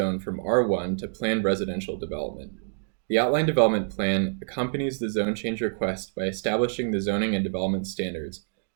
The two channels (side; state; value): left; silent; digital silence